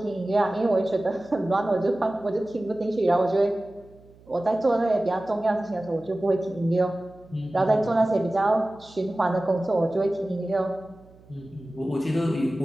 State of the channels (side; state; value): right; noise; hum, 26 dB below the sound